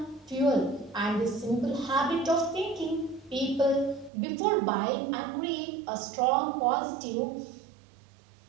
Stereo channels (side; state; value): left; drops out; at 4.1 s